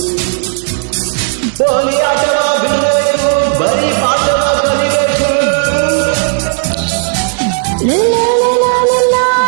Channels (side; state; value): left; silent; 63 dB below the other